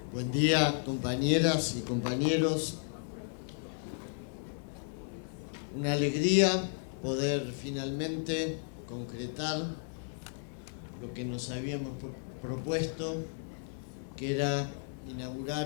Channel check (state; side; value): silent; right; 55 dB below the other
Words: Buen día, compañeras y compañeros. Una alegría poder finalmente concretar lo que nos habíamos propuesto, que era